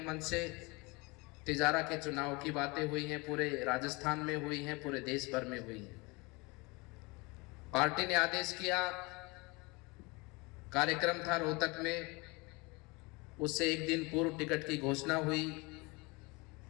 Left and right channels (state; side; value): quieter; right; 26.3 dB